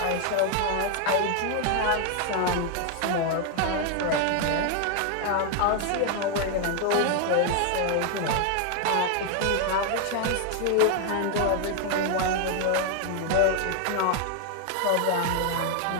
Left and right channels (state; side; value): different; both; correlation 0.00